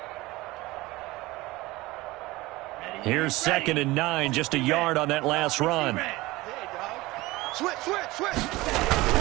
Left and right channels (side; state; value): left; quieter; 20.1 dB